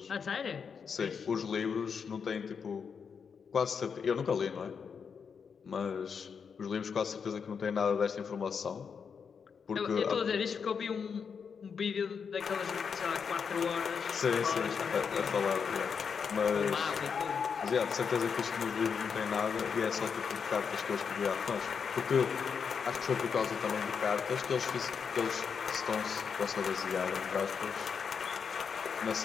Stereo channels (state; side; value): quieter; right; 6.3 dB